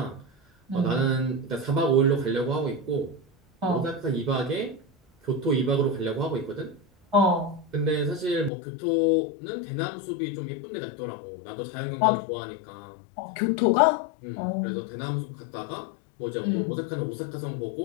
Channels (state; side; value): drops out; right; at 8.5 s